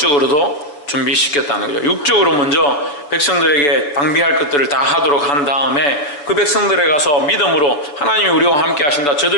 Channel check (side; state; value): right; late; 6.9 ms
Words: 준비시켰다는 거죠. 육적으로 먼저 백성들에게 방비할 것들을 다 하도록 한 다음에 그 백성들에 가서 믿음으로 하나님이 우리와 함께 하신다.